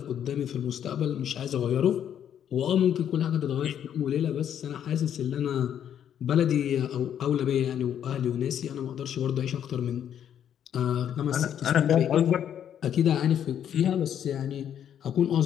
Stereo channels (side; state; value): right; quieter; 9.5 dB